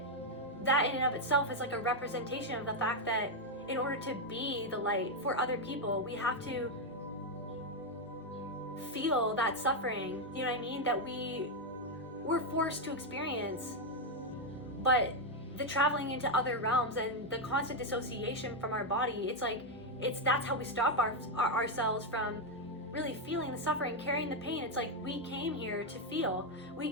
in and of itself is like a representation of the fact that in order to be the light for other people, we have to feel that suffering, you know what I mean, that we're forced to experience. But the traveling into other realms and the constant dissociation from our body, that's how we stop ourselves from really feeling the suffering, carrying the pain. It's like we came here to feel.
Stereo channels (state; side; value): normal; both; correlation 0.02